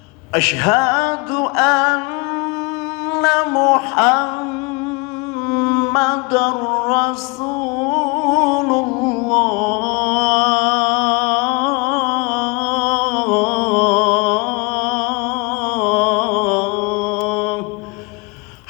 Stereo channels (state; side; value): quieter; right; 29.1 dB